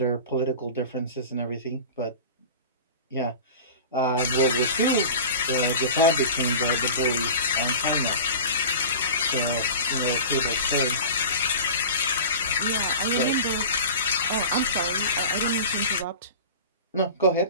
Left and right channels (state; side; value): inverted; both; correlation -0.36